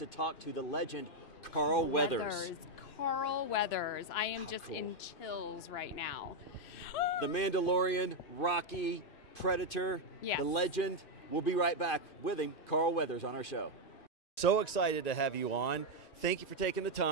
talk to the legend Carl Weathers. Carl Weathers. I am just in chills right now. The Mandalorian, Rocky, Predator, yes. The legend. We'll be right back with him, Carl Weathers, on our show. So excited to have you on. Thank you for taking the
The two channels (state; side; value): late; right; 2.5 ms